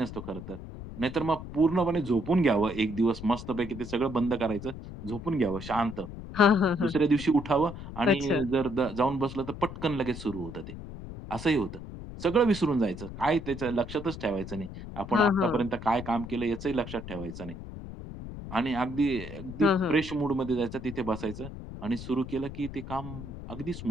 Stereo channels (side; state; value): left; noise; rumble, 11 dB below the sound